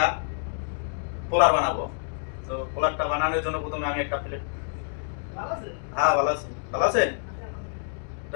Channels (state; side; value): silent; right; digital silence